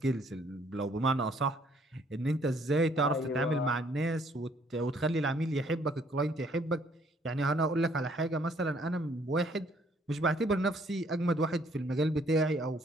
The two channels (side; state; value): both; normal; correlation 0.64